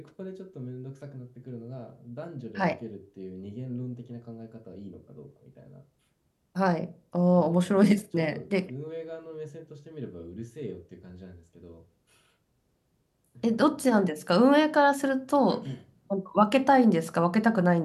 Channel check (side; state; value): both; identical; correlation 1.00